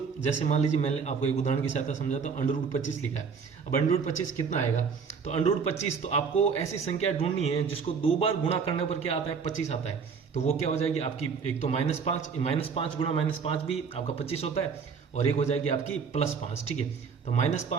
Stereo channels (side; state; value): left; quieter; 5.9 dB